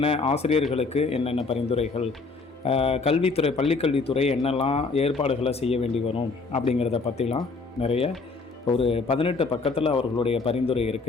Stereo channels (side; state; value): right; quieter; 4.1 dB